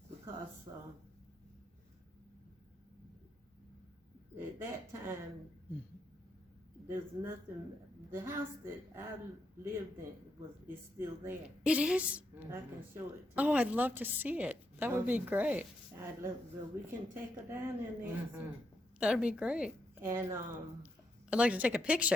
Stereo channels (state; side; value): normal; both; correlation 0.80